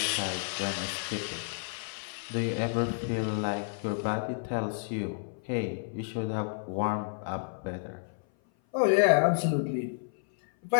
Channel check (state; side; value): silent; right; 56 dB below the other